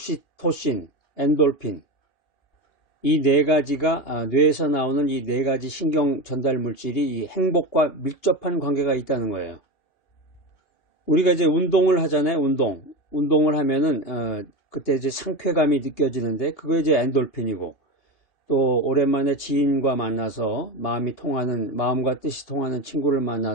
엔돌핀. 이 4가지가 뇌에서 나오는 이 4가지 신경 전달 물질이 이 행복과 밀접한 관계가 있다는 거예요. 우리가 이제 운동을 하잖아요. 운동을 하면은 그때 이제 상쾌감이 느껴지는데, 그거 이제 엔돌핀이고, 또 오랜만에 지인과 만나서 마음과 뜻이 통하는 친구를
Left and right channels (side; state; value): right; late; 2.8 ms